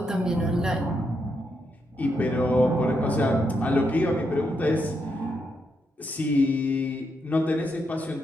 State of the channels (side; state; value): both; normal; correlation 0.81